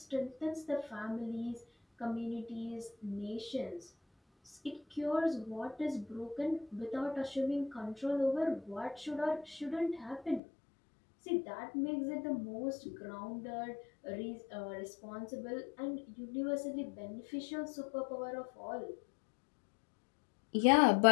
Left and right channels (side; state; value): right; drops out; at 10.4 s